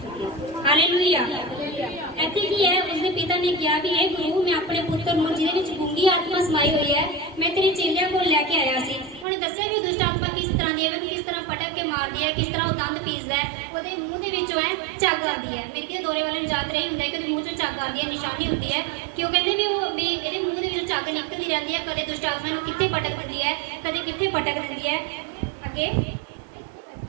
सके। हालेलुया। ਇੱਥੇ ਕੀ ਹੈ ਉਸਦੇ ਪਿਤਾ ਨੇ ਕਿਹਾ ਵੀ ਇਹ ਗੁਰੂ ਮੈਂ ਆਪਣੇ ਪੁੱਤਰ ਨੂੰ ਜਿਹਦੇ ਵਿੱਚ ਗੁੰਗੀ ਆਤਮਾ ਸਮਾਈ ਹੋਈ ਹੈ ਮੈਂ ਤੇਰੇ ਚੇਲਿਆਂ ਕੋਲ ਲੈ ਕੇ ਆਇਆ ਸੀ। ਉਹਨੇ ਦੱਸਿਆ ਵੀ ਦੁਸ਼ਟ ਆਤਮਾ ਕਿਸ ਤਰ੍ਹਾਂ ਦੀ ਹੈ, ਉਹਨੂੰ ਕਿਸ ਤਰ੍ਹਾਂ ਪਟਕ ਕੇ ਮਾਰਦੀ ਹੈ, ਕਿਸ ਤਰ੍ਹਾਂ ਉਹ ਦੰਦ ਪੀਸਦਾ ਹੈ, ਉਹਦੇ ਮੂੰਹ ਦੇ ਵਿੱਚੋਂ ਹੈ ਝੱਗ ਆਉਂਦੀ ਹੈ। ਮੇਰੇ ਕਿਤੇ ਦੌਰੇ ਵਾਲੇ ਨੂੰ ਯਾਦ ਰਹੀ ਹੁੰਦਾ ਹੈ ਕਿ ਉਹਦੇ ਮੂੰਹ ਚੋਂ ਝੱਗ ਆਉਂਦੀ ਹੈ, ਨਿਸ਼ਾਨੀ ਹੁੰਦੀ ਹੈ ਕਿ ਉਹ ਕਹਿੰਦੇ ਵੀ ਇਹਦੇ ਮੂੰਹ ਦੇ ਵਿੱਚੋਂ ਝੱਗ ਨਿਕਲਦੀ ਰਹਿੰਦੀ ਹੈ। ਕਦੇ ਦੁਸ਼ਟ ਆਤਮਾ ਨੂੰ ਕਿੱਥੇ ਪਟਕ ਦਿੰਦੀ ਹੈ, ਕਦੇ ਕਿੱਥੇ ਪਟਕ ਦਿੰਦੀ ਹੈ। ਅੱਗੇ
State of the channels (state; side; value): drops out; left; at 9.2 s